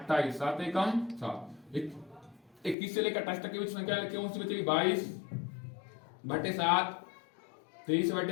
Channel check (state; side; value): drops out; right; at 2.8 s